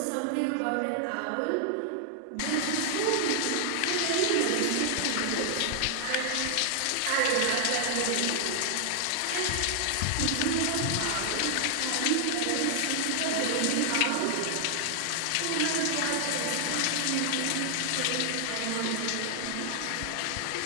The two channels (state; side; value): different; both; correlation 0.00